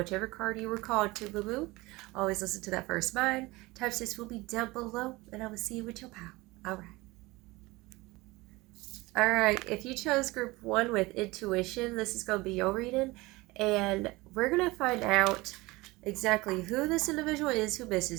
card you were called to, boo boo. Always listen to that first mind. Timestamps will be down below, and I will see you with your pal. All right. All right, if you chose group one with intuition, this is going to be your reading, and we're going to find out exactly who this individual is who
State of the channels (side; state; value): left; quieter; 21.6 dB